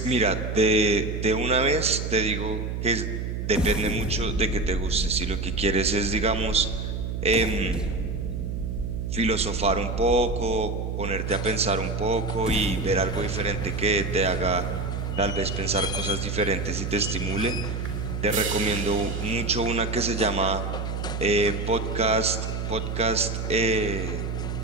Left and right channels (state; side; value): noise; right; hum, 3 dB below the sound